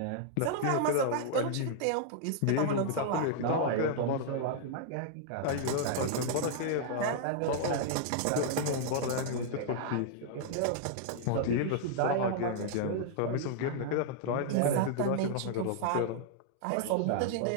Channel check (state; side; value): different; both; correlation -0.01